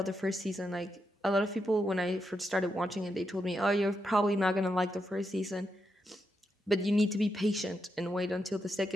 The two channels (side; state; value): both; normal; correlation 0.83